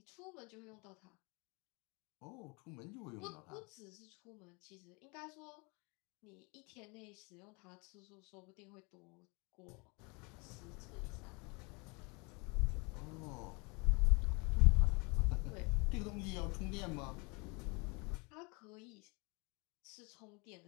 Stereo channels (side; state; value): right; quieter; 29.8 dB